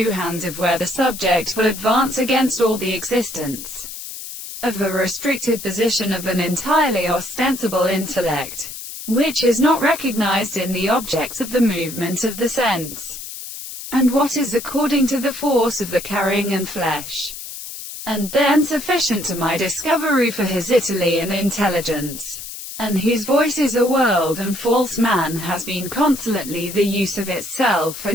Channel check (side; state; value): left; noise; hiss, 10 dB below the sound